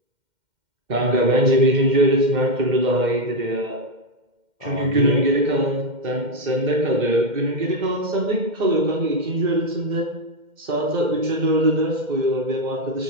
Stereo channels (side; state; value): left; late; 2.1 ms